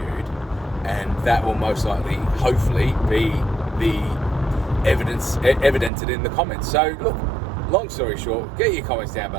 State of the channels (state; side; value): drops out; left; at 5.9 s